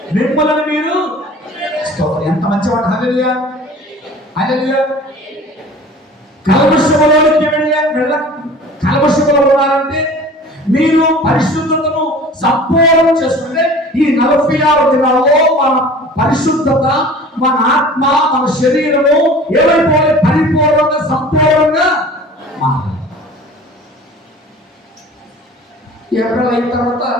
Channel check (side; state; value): both; normal; correlation 0.43